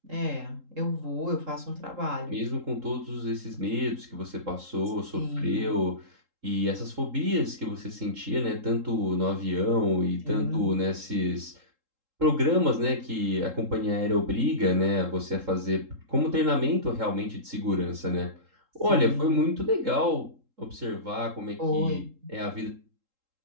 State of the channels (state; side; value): late; left; 3.7 ms